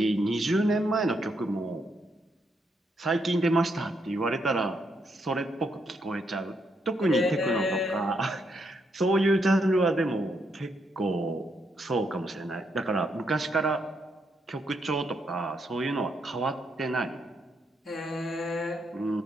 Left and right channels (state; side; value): normal; both; correlation 0.78